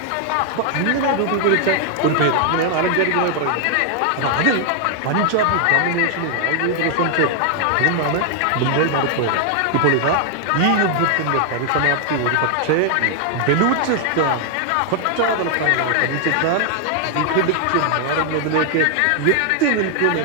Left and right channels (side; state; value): both; different; correlation 0.00